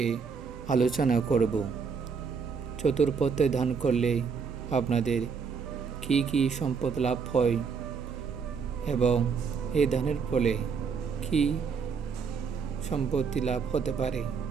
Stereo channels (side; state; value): left; quieter; 5.7 dB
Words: আলোচনা করব। চতুর্পথে দান করলে আপনাদের কি কি সম্পদ লাভ হয় এবং এই দানের ফলে কি সম্পত্তি লাভ হতে পারে